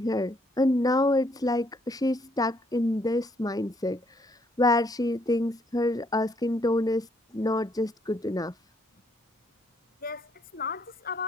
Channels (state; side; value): normal; both; correlation 0.70